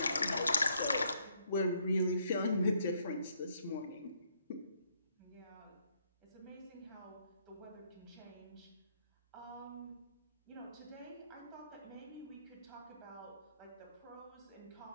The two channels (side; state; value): both; inverted; correlation -0.72